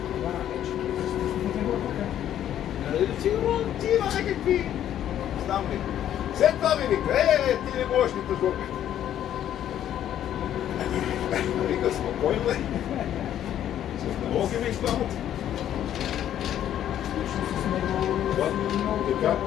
Сигурно ти има някакви... Знам ли. След това ми вика, ти не можеш ни тъжбока. Вика, спокойно бе. С налоги ми изпамат. Така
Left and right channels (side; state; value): right; quieter; 11.0 dB